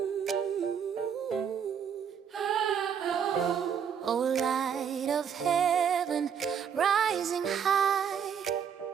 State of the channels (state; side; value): quieter; left; 7.7 dB